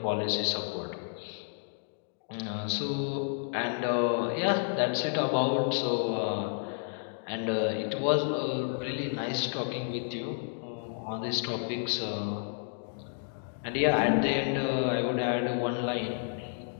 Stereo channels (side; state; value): right; silent; digital silence